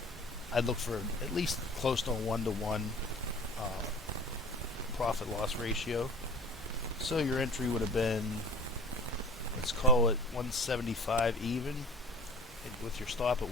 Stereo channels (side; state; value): both; normal; correlation 0.42